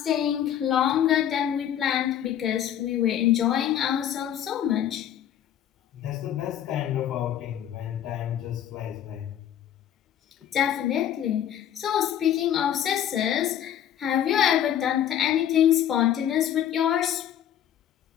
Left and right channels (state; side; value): quieter; right; 10.4 dB